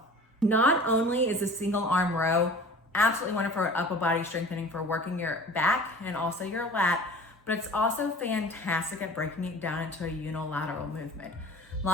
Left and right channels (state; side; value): normal; both; correlation 0.43